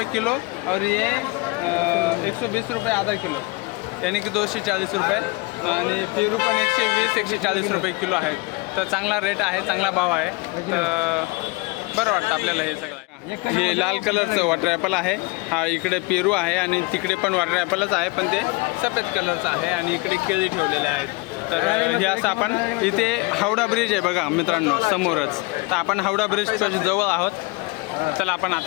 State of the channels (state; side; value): quieter; right; 25.6 dB